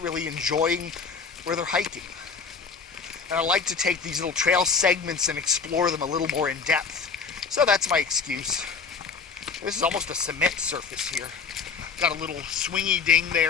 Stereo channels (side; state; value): right; quieter; 5.4 dB